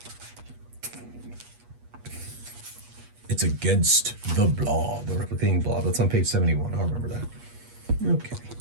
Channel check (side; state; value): left; late; 8.3 ms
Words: It's against the blob, the replicating blob. That's on page 71. I'll remember that. Okay.